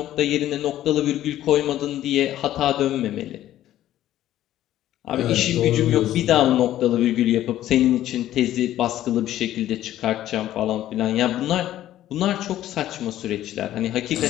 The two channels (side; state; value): right; quieter; 13.1 dB